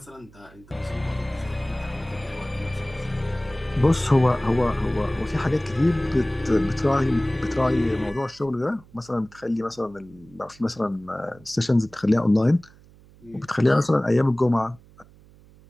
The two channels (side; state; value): right; noise; hum, 25 dB below the sound